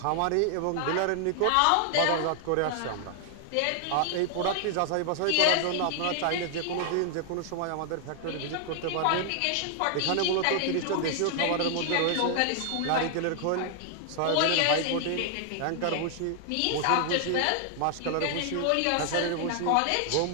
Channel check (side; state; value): both; different; correlation 0.00